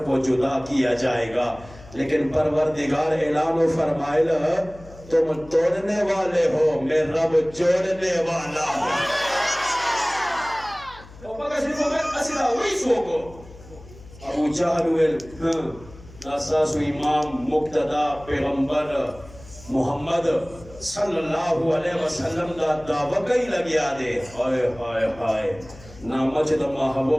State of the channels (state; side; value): noise; left; hum, 20 dB below the sound